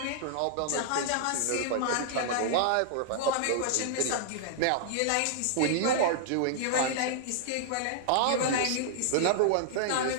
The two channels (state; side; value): different; both; correlation -0.01